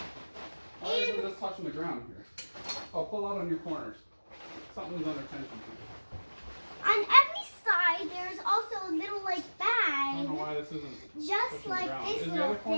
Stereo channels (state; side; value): inverted; both; correlation -1.00